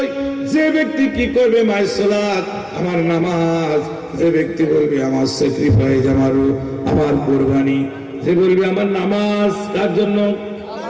যে ব্যক্তি কি করবে, মায়ের সালাত, আমার নামাজ, যে ব্যক্তি বলবে আমার স্যাক্রিফাইস, আমার কুরবানি, যে বলবে আমার নামাজ কার জন্য,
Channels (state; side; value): identical; both; correlation 1.00